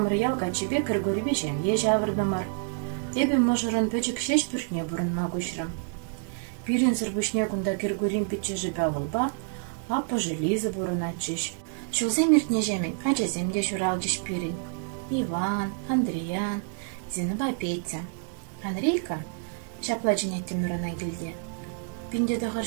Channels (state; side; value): silent; left; 59 dB below the other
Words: ялға чебе кіргөрібе жем ежі авырдымар. Эбі мұжырын пөчік шеш бүртне бұрынма көшірім. Пирин сырбышне күнда кіргөрім пітчі жібе авылба, апы желізі бұрын атчыш. Шылзем ертне жемін, ачаземде журал жеш пирин. Иван, Андриан, Зиныба Петя. Андрейка шапла женетті мұрына келде. Пинде дұғыр